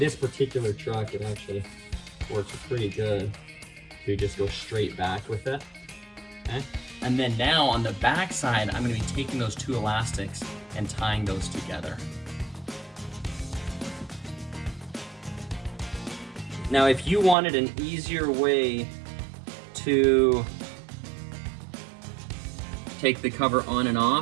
particular truck, it actually works pretty good to just go straight back with it. Okay, and then now on the back side, I'm gonna be taking those two elastics and tying those together. Now, if you wanted an easier way to take the cover on and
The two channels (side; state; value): left; drops out; at 17.4 s